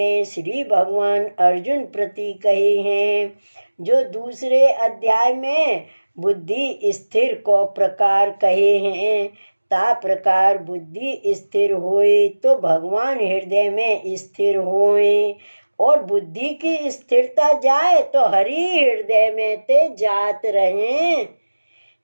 श्री भगवान अर्जुन प्रति कहे हैं, जो दूसरे अध्याय में बुद्धि स्थिर को प्रकार कहे हैं, ता प्रकार बुद्धि स्थिर होए तो भगवान हृदय में स्थिर होए, और बुद्धि की स्थिरता जाए तो हरि हृदय में ते जात रहे।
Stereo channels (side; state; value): both; inverted; correlation -1.00